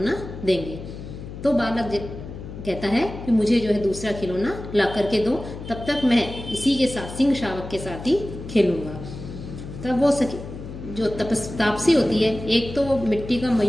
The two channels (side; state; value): left; noise; hum, 11 dB below the sound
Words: देंगे। तो बालक कहता है कि मुझे जो है दूसरा खिलौना ला करके दो, तब तक मैं इसी के साथ, सिंह शावक के साथ ही खेलूंगा। तब वो जो तापसी होती है, एक तो वो मिट्टी का